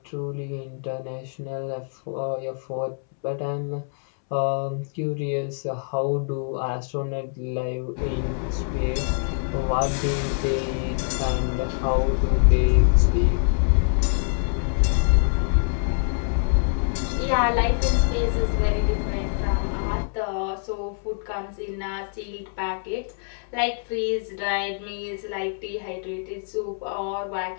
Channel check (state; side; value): silent; right; 62 dB below the other